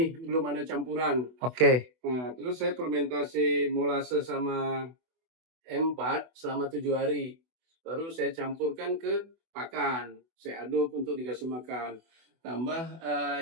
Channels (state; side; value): late; left; 24 ms